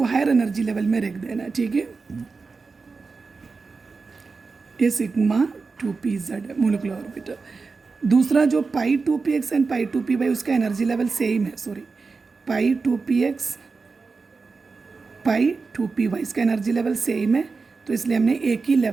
हायर एनर्जी लेवल में रख देना, ठीक है। ये सिग्मा 2pz है मोलिकुलर ऑर्बिटल। दूसरा जो पाई 2px एंड पाई 2py उसका एनर्जी लेवल सेम है, सॉरी, पाई 2px पाई 2py इसका एनर्जी लेवल सेम है, तो इसलिए हमने एक ही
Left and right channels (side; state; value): left; quieter; 4.4 dB